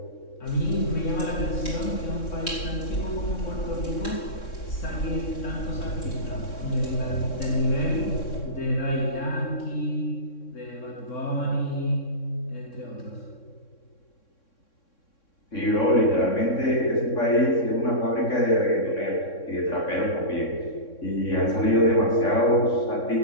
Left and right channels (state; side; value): late; right; 3.6 ms